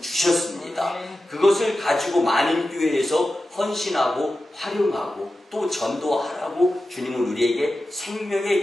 주셨습니다. 그것을 가지고 만인교회에서 헌신하고 활용하고 또 전도하라고 주님은 우리에게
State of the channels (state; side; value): normal; both; correlation 0.93